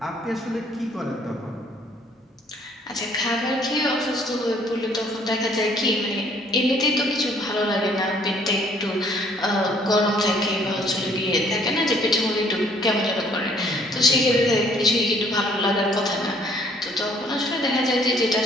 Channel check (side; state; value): both; normal; correlation 0.61